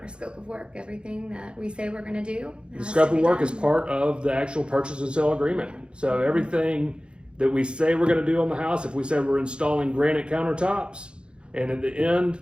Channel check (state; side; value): late; left; 0.055 ms